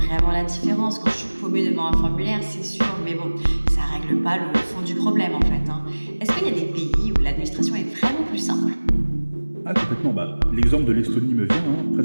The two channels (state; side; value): inverted; both; correlation -1.00